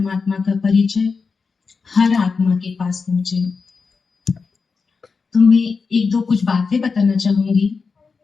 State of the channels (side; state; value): right; quieter; 4.9 dB